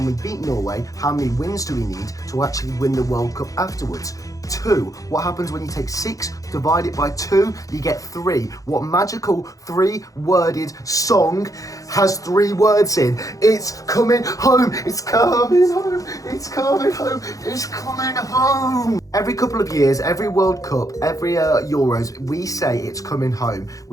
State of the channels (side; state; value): right; late; 0.17 ms